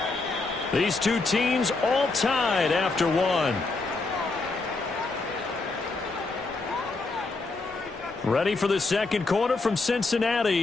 These 2 teams all tied after 1. Ready for the 2nd quarter from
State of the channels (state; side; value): quieter; right; 3.6 dB